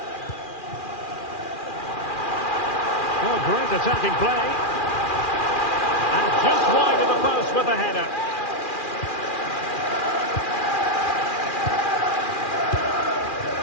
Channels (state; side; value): late; right; 2.4 ms